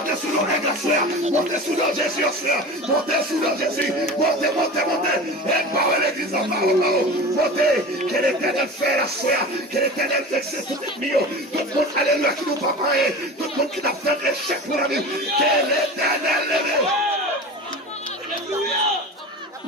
sous l'eau aigle à soya, montez sous l'eau Jésus au soya, montez sous l'eau Jésus, montez, aigle par l'église en parole, montez, que l'éternel fait la soya, que l'éternel fixe tout le milieu, tout le monde, alléluia, qui nous pas parler, tout le monde qui n'a fait un échec pour la vie, que l'éternel lève.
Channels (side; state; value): both; normal; correlation 0.33